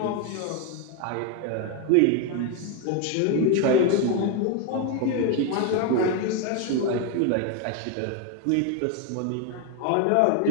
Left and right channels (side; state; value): both; different; correlation 0.02